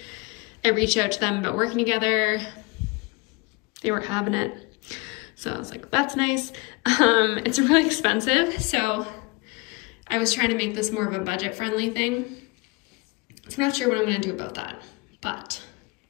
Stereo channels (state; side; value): quieter; right; 26.2 dB